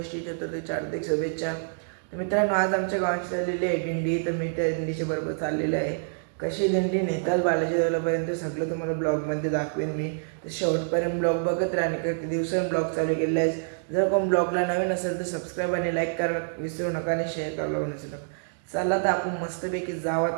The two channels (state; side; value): silent; left; digital silence